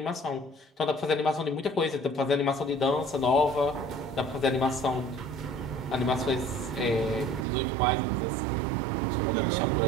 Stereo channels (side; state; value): left; drops out; at 7.5 s